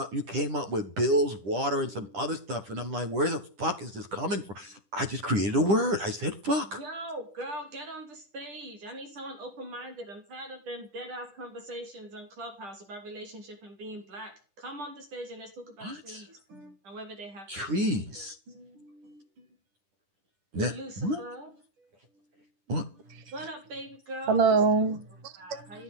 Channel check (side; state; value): left; late; 10 ms